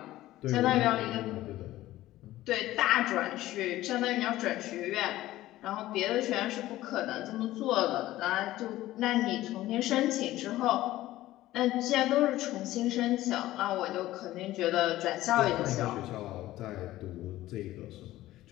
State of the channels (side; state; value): right; quieter; 15.7 dB